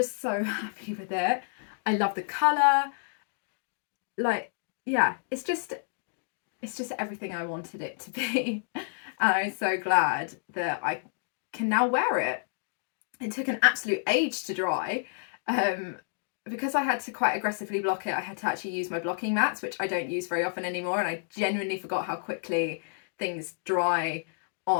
so happy with it. I love the colour. Like, yeah, it's just everything I wanted it to be. And I'm so glad that I can now wear it. It took an absolute age to dry. Because I had to quite aggressively block it, I had to actually use my blocking mats, which I don't use very often anymore, and I genuinely forgot how quickly things dry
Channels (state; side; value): silent; right; digital silence